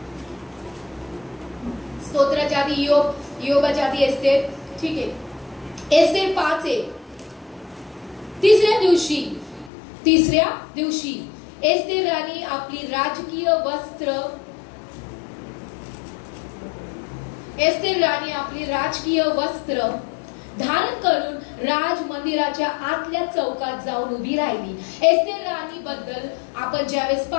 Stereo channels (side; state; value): right; drops out; at 9.7 s